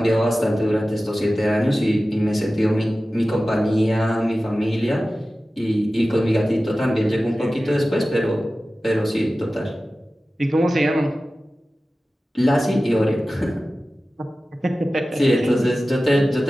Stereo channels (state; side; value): normal; both; correlation 0.95